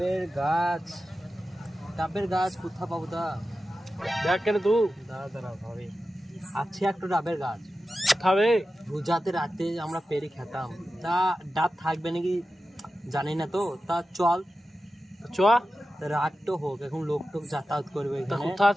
গাছ, ডাবের গাছ কোথা পাবো তা? দেখ কেন তুই দাঁড়া ভাবে, আছে একটা ডাবের গাছ। খাবে? রোজাতে রাতে আমরা পেরে খেতাম, তা ডাব থাকবে নাকি জানি না তো। তা চল, চ। রাত তো হোক, এখন লোক টোক যাতায়াত করবে তা এখানে। কোথা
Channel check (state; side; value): normal; both; correlation 0.93